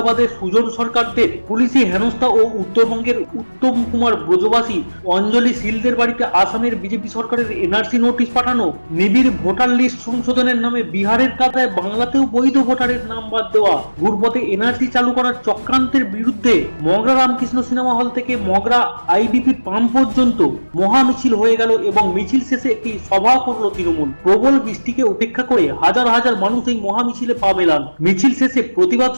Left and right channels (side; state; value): both; inverted; correlation -1.00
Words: সুজন সরকারদের পুলিশি হেনস্থা ও উত্তরবঙ্গের উত্তম কুমার ব্রজবাসী অঞ্জলি শীলদের বাড়িতে আসামের বিজেপি সরকারের এনআরসি নোটিশ পাঠানো, নিবিড় ভোটার লিস্ট সংশোধনের নামে বিহারের কাতায় বাংলাতেও বৈধ ভোটারের নাম বাদ দেওয়া, ঘুরপথে এনআরসি চালু করার চক্রান্তের বিরুদ্ধে মগরা রামকৃষ্ণ সিনেমা হল থেকে মগরা আইডিপি পাম্প পর্যন্ত মহা মিছিল হয়ে গেল এবং মিছিল শেষে একটি সভা করল তৃণমূল। প্রবল বৃষ্টিকে উপেক্ষা করে হাজার হাজার মানুষ এই মহা মিছিলে পা মেলান। মিছিল শেষে প্রতিবাদ